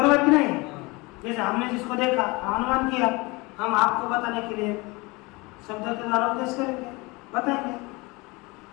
कि नहीं? जैसे हमने जिसको देखा अनुमान किया, हम आपको बताने के लिए शब्द के द्वारा उपदेश करेंगे, बताएंगे।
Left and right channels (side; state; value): right; quieter; 25.0 dB